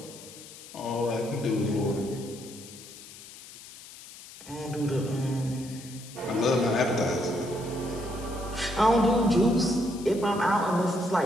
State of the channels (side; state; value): left; noise; hiss, 17 dB below the sound